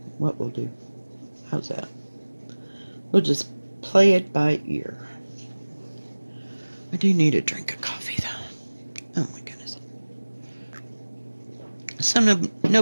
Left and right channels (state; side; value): inverted; both; correlation -1.00